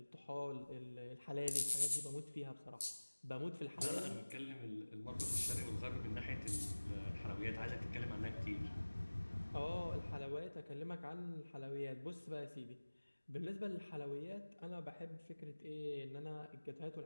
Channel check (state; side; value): inverted; both; correlation -1.00